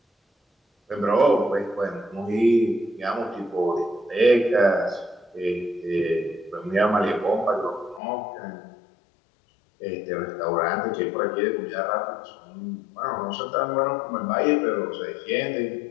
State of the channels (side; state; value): right; drops out; at 8.0 s